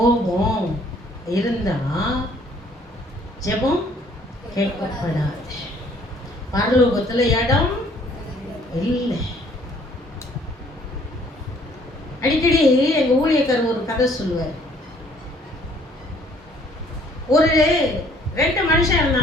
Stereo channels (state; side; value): normal; both; correlation 0.60